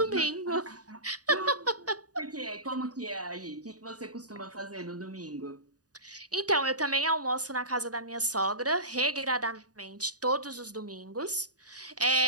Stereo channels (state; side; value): late; left; 0.68 ms